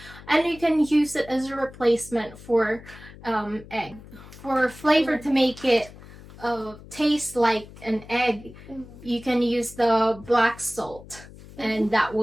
and you can use it as a replacement for egg. For flavor to make it taste like an egg, you can use the black salt, and that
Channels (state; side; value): noise; left; hum, 18 dB below the sound